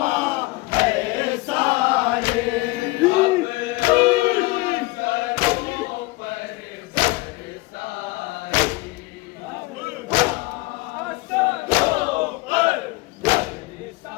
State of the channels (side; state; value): right; quieter; 22.0 dB